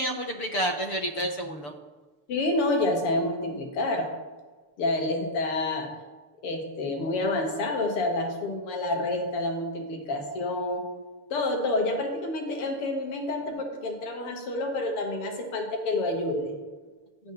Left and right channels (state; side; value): late; right; 6.8 ms